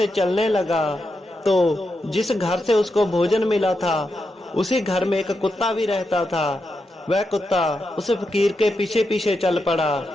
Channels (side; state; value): both; normal; correlation 0.86